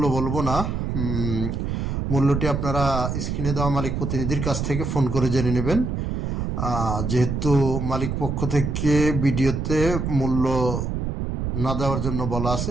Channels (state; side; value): noise; right; rumble, 2 dB below the sound